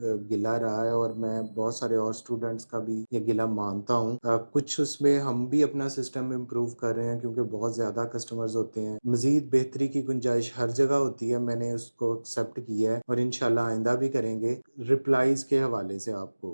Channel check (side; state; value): both; inverted; correlation -1.00